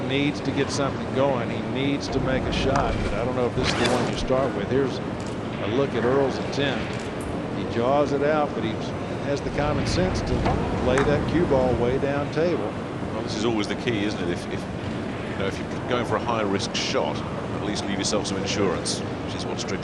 needs to get something going. He needs to make a shot, but I don't know if this is the one you start with. Here's a look at Earl's attempt. He jaws it out, but he has the common sense to play that cue ball way down table. Well, this is always the key, isn't it? If you know, if you're going for a high risk shot, at least leave yourself some insurance, which is what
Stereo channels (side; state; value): both; identical; correlation 1.00